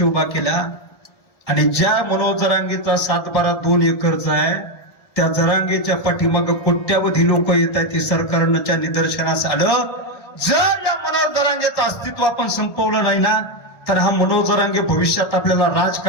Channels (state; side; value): late; right; 1.6 ms